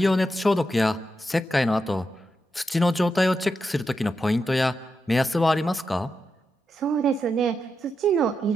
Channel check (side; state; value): both; normal; correlation 0.86